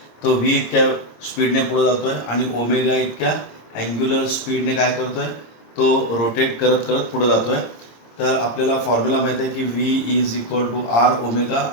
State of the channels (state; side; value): late; right; 26 ms